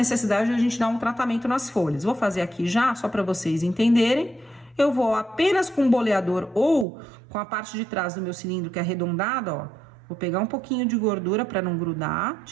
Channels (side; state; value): left; drops out; at 6.9 s